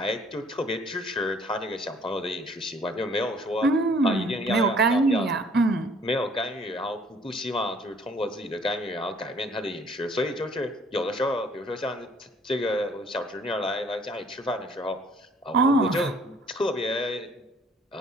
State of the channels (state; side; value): normal; both; correlation 0.58